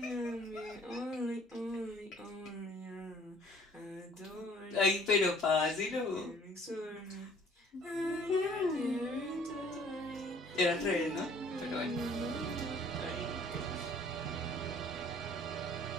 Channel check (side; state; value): both; normal; correlation 0.55